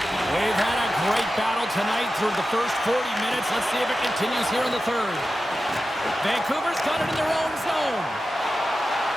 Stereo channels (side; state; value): both; normal; correlation 0.92